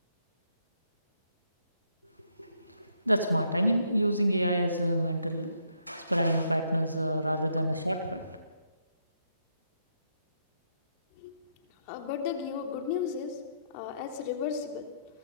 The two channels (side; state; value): both; inverted; correlation -0.75